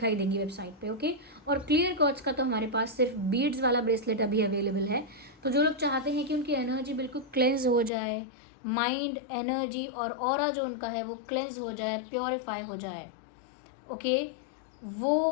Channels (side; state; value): right; drops out; at 7.9 s